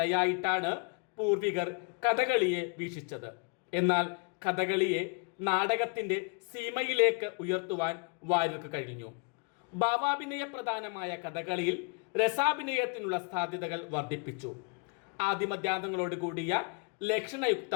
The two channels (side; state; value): right; quieter; 34.8 dB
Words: പൂർവികർ കഥകളിയെ വീക്ഷിച്ചത്. എന്നാൽ കഥകളിയെ നാടകത്തിൻ്റെ സീമയിലേക്ക് ഉയർത്തുവാൻ വാര്യർക്ക് കഴിഞ്ഞു. ഭാവാഭിനയ പ്രധാനമായ കഥകളിയിൽ രസാഭിനയത്തിനുള്ള സാധ്യതകൾ വർദ്ധിപ്പിച്ചു. ആദിമധ്യാന്തങ്ങളോട് കൂടിയ